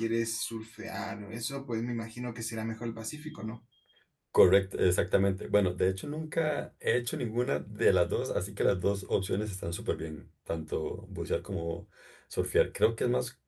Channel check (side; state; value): both; identical; correlation 1.00